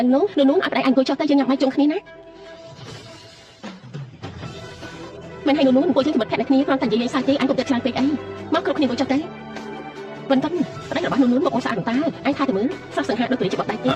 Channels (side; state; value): both; identical; correlation 1.00